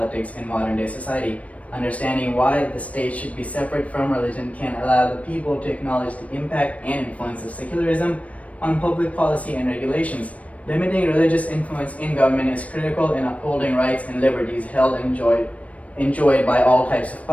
in modern day society. Understanding why the state should be separate from religion can allow the people to acknowledge the impact and influence of secularism on public policy and regulations. Limiting religious influence in government is critical in upholding rights and liberties held and enjoyed by all types of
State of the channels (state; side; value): late; right; 0.066 ms